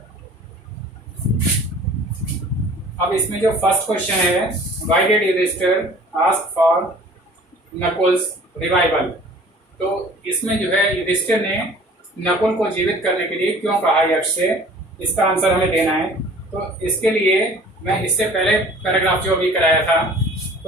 अब इसमें जो फर्स्ट क्वेश्चन है, why did Yudhishthir ask for Nakul's revival, तो इसमें जो है युधिष्ठिर ने नकुल को जीवित करने के लिए क्यों कहा यक्ष से, इसका आंसर हमें देना है। तो इसके लिए मैं इससे पहले पैराग्राफ जो अभी कराया था,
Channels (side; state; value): both; normal; correlation 0.49